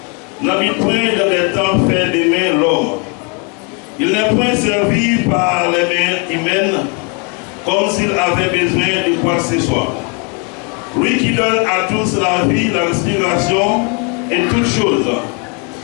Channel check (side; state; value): right; quieter; 34.9 dB